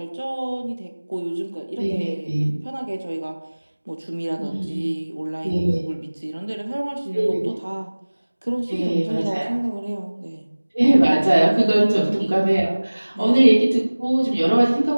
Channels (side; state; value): both; inverted; correlation -1.00